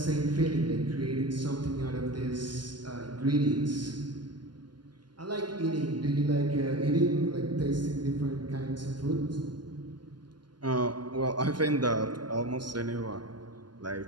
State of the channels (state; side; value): late; left; 0.71 ms